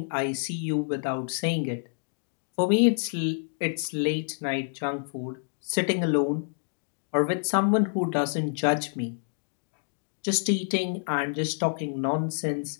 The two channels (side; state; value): right; silent; digital silence